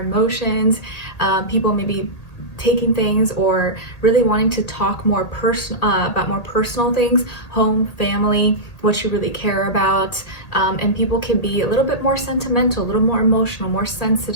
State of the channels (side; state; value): right; late; 1.8 ms